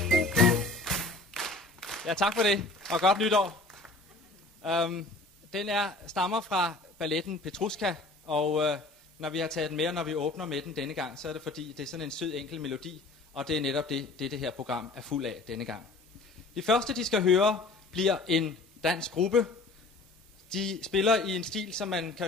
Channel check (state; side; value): quieter; right; 3.1 dB